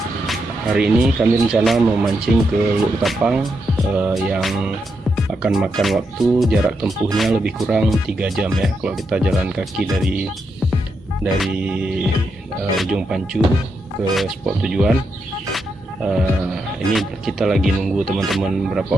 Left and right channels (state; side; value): normal; both; correlation 0.83